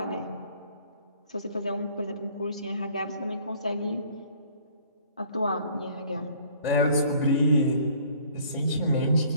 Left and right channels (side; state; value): both; inverted; correlation -0.56